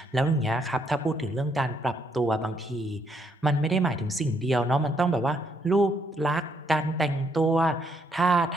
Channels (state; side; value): normal; both; correlation 0.73